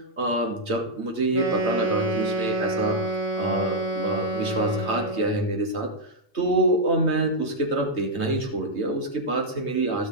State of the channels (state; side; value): late; right; 3.2 ms